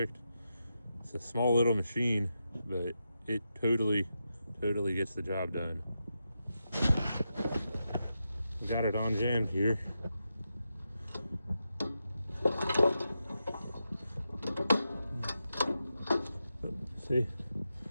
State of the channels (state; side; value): inverted; both; correlation -0.88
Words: It's a small little machine, but it totally gets the job done. We got it on jammed here. See?